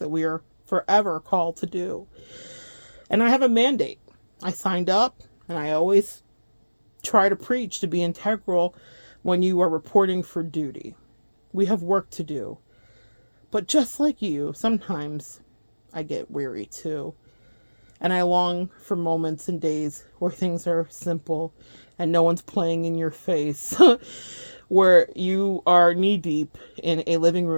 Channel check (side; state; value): both; inverted; correlation -1.00